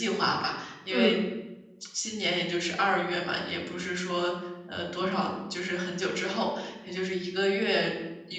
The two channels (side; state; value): both; identical; correlation 1.00